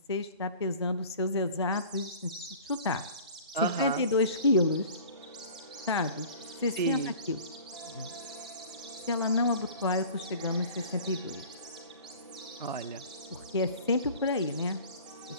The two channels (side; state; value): both; inverted; correlation -0.44